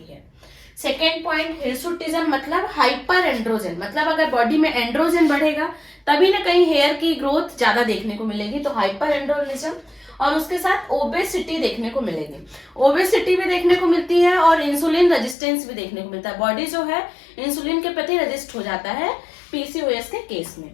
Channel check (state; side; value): drops out; right; at 15.4 s